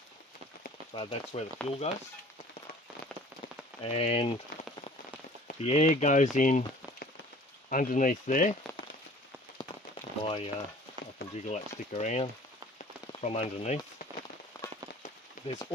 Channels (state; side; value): normal; both; correlation 0.49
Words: so that's where the fuel goes. And the air goes in underneath there. I can jiggle that stick around from underneath. There's